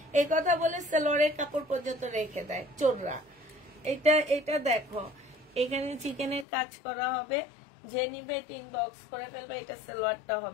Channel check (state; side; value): drops out; right; at 6.5 s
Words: এই কথা বলে সালোয়ারের কাপড় পর্যন্ত রেখে দেয় চোররা। এটা দেখো, এখানে চিকেনের কাজ করা হবে, যে নিবে এটা ইনবক্স করে ফেলবে, এটা সালোয়ারটা